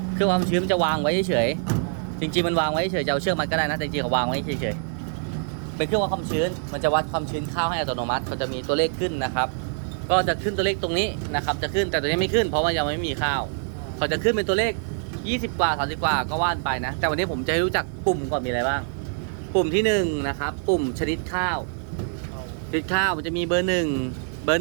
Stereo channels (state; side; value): silent; left; 62 dB below the other